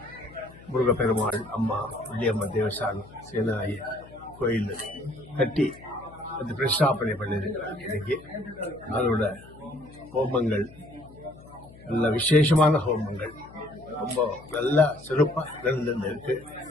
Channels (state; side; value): noise; left; hum, 21 dB below the sound